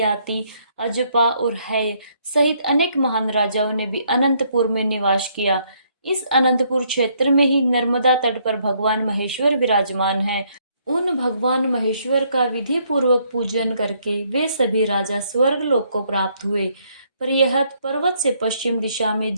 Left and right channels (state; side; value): inverted; both; correlation -0.70